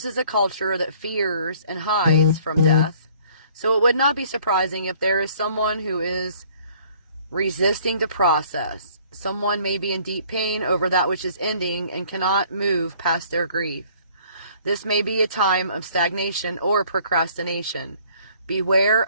is a culture that fears and hides from death, so it would not be surprising if there is someone who is resisting the process. Someone may be in deep pain over that which is ending and cannot move past their grief. This may be a time of stagnation or procrastination. Beware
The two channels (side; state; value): both; inverted; correlation -0.57